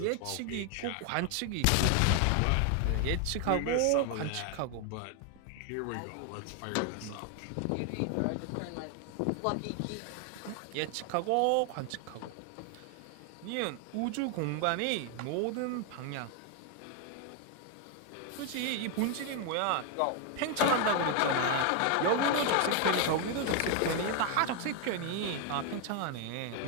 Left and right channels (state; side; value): different; both; correlation 0.01